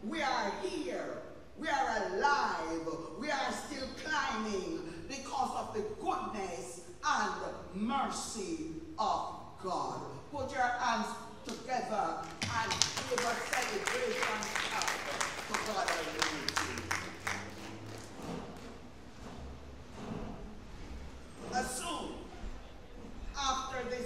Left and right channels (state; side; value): identical; both; correlation 1.00